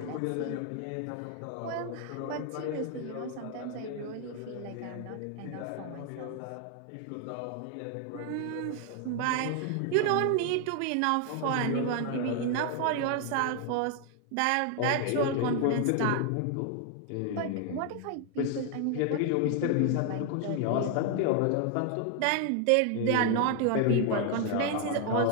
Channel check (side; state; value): both; different; correlation 0.00